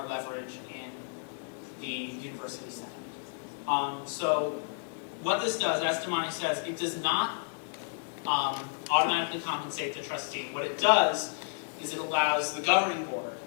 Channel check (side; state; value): right; silent; digital silence